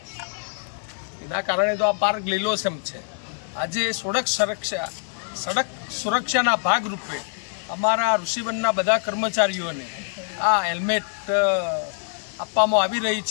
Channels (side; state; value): right; silent; digital silence